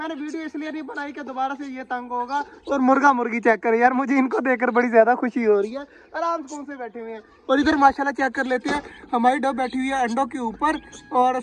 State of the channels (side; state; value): both; identical; correlation 1.00